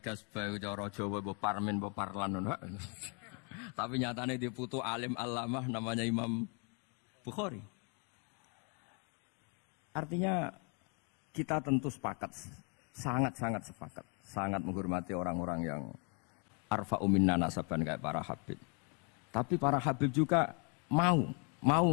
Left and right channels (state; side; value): quieter; right; 36.3 dB